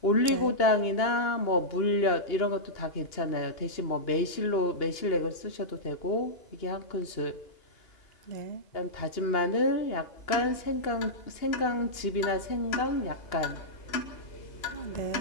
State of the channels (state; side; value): late; right; 2.8 ms